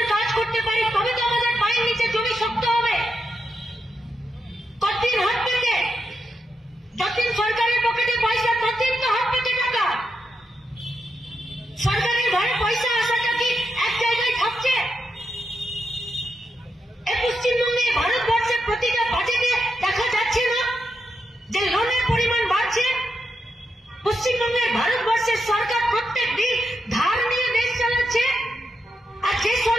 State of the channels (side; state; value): both; normal; correlation 0.85